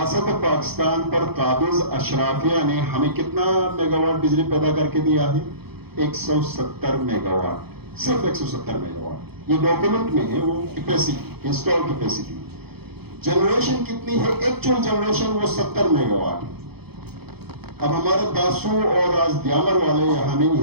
پاکستان پر قابض اشرافیہ نے ہمیں کتنا میگا واٹ بجلی پیدا کر کے دیا ہے؟ 170 میگا واٹ، صرف 170 میگا واٹ۔ یہ ڈاکومنٹ میں ہے، وہ کیپیسٹی، انسٹال کیپیسٹی۔ جنریشن کتنی ہے؟ ایکچوئل جنریشن وہ 70 میگا واٹ۔ اب ہمارے داسو اور آج دیامر والے یہاں نہیں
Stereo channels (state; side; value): late; left; 0.97 ms